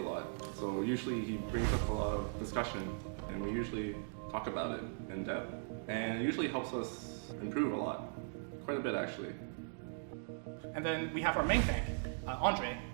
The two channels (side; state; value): left; silent; digital silence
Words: lot. So usually he brings up a lot of discussion, and we usually talk about it in depth. And it usually helps us improve a lot. Quite a bit, actually. And then we have our main tank, Andre,